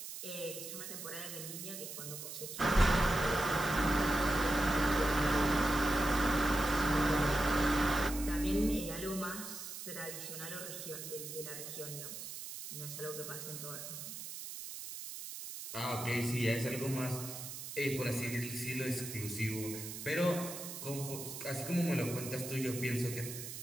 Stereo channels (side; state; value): right; noise; hiss, 9 dB below the sound